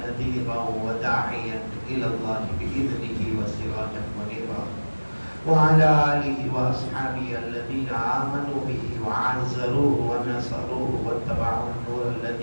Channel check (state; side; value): inverted; both; correlation -1.00